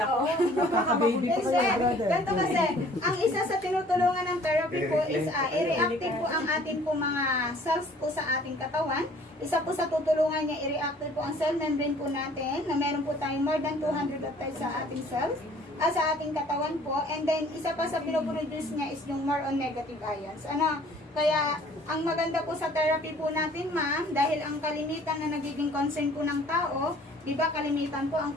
oh. Nakaka-baby pa kayo, brother. Ganito kasi, ang isa sa tinutulungan ng therapy po is i-reactive po ang ating po mga cells po sa ating katawan. Isa po sa tutulungan niya, i-reactive po ang cell membrane po natin na meron po tayong more than 200 of times sa ating cells. Sa ating katawan po. And then, isa pa sa pinoproduce niya is yung more on negative ions. Ano? Kaya, ang maganda po sa therapy po natin, ma'am, dahil ang kalimitan na nagiging concern po ng tao, di ba kalimitan po ang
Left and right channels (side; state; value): both; normal; correlation 0.54